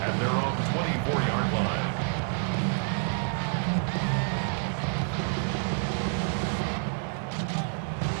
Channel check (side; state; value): left; silent; 59 dB below the other